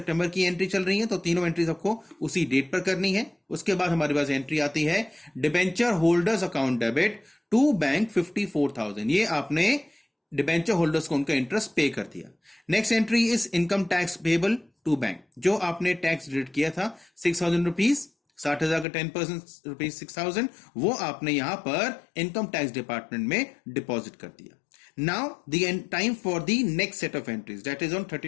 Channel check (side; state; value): right; drops out; at 18.9 s